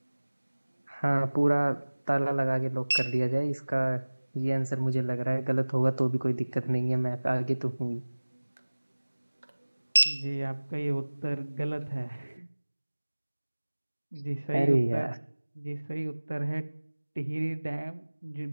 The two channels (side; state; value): both; inverted; correlation -1.00